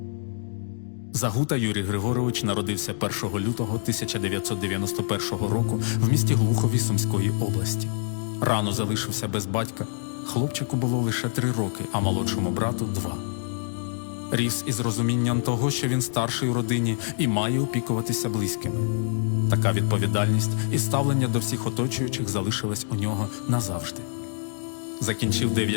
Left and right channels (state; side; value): silent; right; digital silence